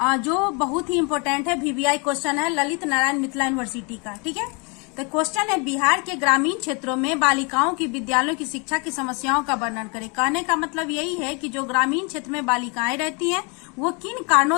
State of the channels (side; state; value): right; quieter; 32.1 dB